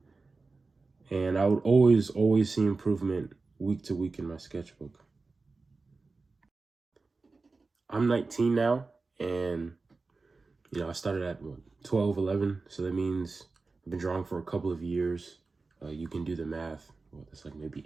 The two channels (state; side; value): quieter; left; 3.9 dB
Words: And I would always see improvement week to week in my sketchbook. I'm 19 now, and I started at 12, 11. So that means I've been drawing for a couple of years. You can do the math. That's like maybe